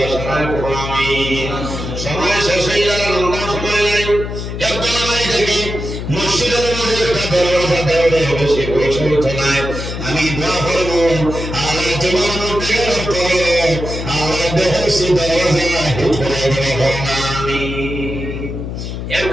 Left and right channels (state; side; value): noise; left; hum, 6 dB below the sound